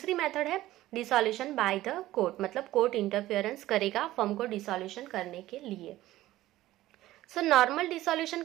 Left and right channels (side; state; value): left; quieter; 15.7 dB